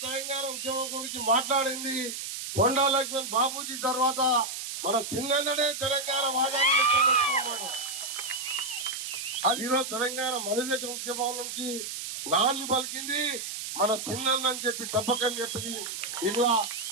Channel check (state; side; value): noise; right; hiss, 6 dB below the sound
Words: తెలంగాణ ఉద్యమం గురించి మాట్లాడింది కొండా లక్ష్మణ్ బాబూజీ. తర్వాత మన చిన్ననే తెలంగాణ వాదాన్ని అది ఈరోజు తెలంగాణ మనదేశ ఉద్యమం నుంచి నాన్ని పలికింది మన చిన్నని చెప్పి తప్పకని చెప్పింది. ఇలా